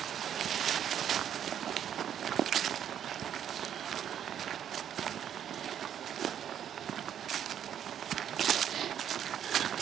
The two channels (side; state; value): left; quieter; 9.4 dB